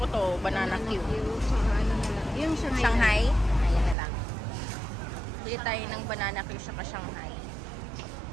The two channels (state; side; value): drops out; left; at 4.0 s